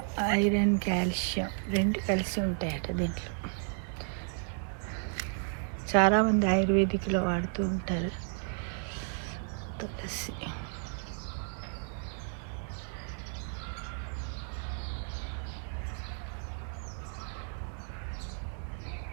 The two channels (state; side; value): silent; left; 56 dB below the other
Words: ఐరన్ కాల్షియం రెండు కలిసి ఉంటాయట దీంట్లో. చాలామంది ఆయుర్వేదిక్లో వాడుతూ ఉంటారు తులసి.